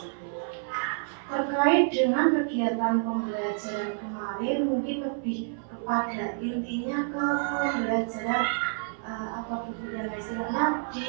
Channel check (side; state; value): left; silent; 59 dB below the other